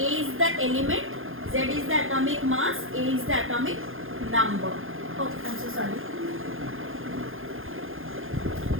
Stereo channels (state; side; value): late; left; 0.60 ms